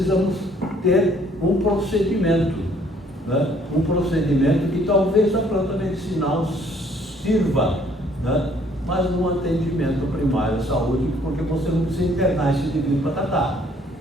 ter um procedimento. Né? Um procedimento que talvez a planta medicinal sirva, né? Mas no atendimento primário à saúde, porque você não precisa internar esse indivíduo para tratar.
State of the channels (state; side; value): normal; both; correlation 0.62